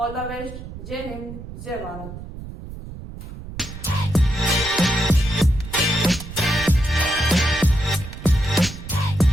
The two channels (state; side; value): noise; right; rumble, 12 dB below the sound